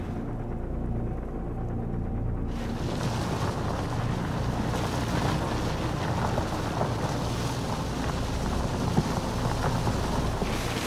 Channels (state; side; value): identical; both; correlation 1.00